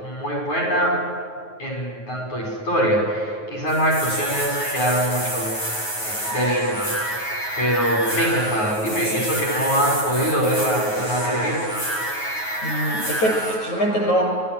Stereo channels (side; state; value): right; late; 9.3 ms